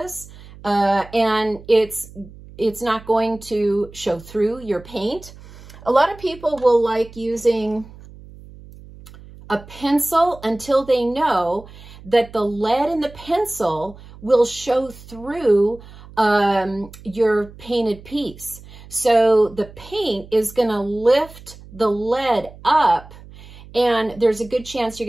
And it's not going to show through your paint. A lot of people will like using a pencil until they know that the lead in the pencil will show through your painted piece. So the paint is going to lift the lead up, and there's a good chance you're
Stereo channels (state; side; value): noise; right; hum, 19 dB below the sound